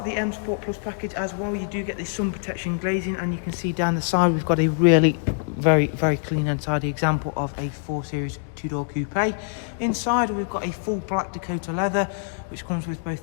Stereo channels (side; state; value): right; silent; digital silence